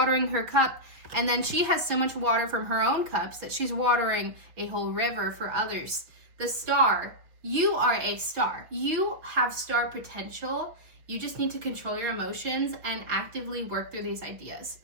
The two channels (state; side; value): late; left; 5.8 ms